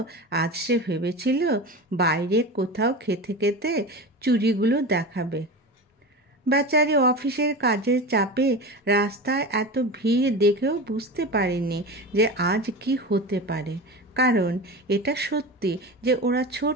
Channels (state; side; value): normal; both; correlation 0.28